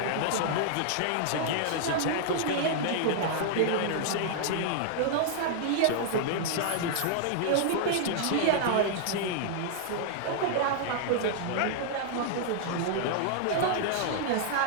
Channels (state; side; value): different; both; correlation -0.01